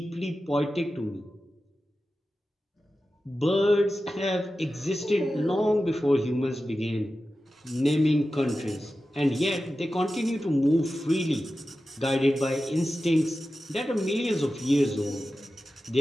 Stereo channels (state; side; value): normal; both; correlation 0.93